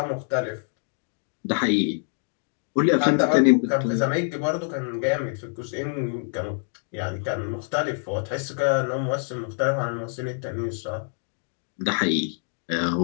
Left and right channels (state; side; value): silent; right; digital silence